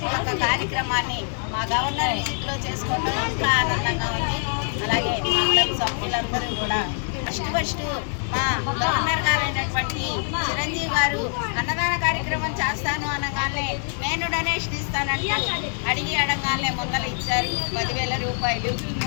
ఈ యొక్క కార్యక్రమాన్ని మా గవర్నర్ విజిట్లో చేసుకోవడం ఇంకా ఆనందంగా ఉంది. అలాగే మా క్లబ్ సభ్యులందరూ కూడా ఫస్ట్ మా గవర్నర్ గారు అయినటువంటి చిరంజీవి గారు అన్నదాన కార్యక్రమం చేస్తాను అనగానే నేను డొనేషన్ ఇస్తానంటూ అడిగి అడగానే ముందర ఇచ్చారు 10,000 రూపాయలు.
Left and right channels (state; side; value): silent; right; 58 dB below the other